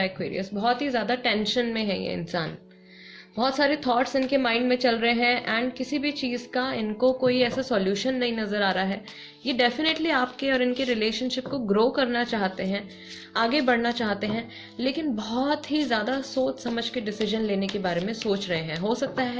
Aquarius. बहुत ही ज़्यादा टेंशन में है ये इंसान, बहुत सारे थॉट्स इनके माइंड में चल रहे हैं, एंड किसी भी चीज़ का इनको कोई ऐसा सॉल्यूशन नहीं नज़र आ रहा है। ये डेफिनेटली आपके और इनके रिलेशनशिप को ग्रो करना चाहते हैं, आगे बढ़ना चाहते हैं, लेकिन बहुत ही ज़्यादा सोच समझ के डिसीजन लेने के बारे में सोच रहे हैं। हो सकता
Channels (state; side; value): identical; both; correlation 1.00